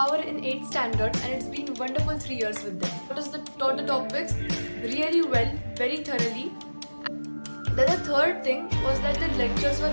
in 8th standard and it's been wonderful 3 years with them. Taught the topics really well, very thoroughly. Then the third thing was that the lectures were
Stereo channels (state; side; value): inverted; both; correlation -1.00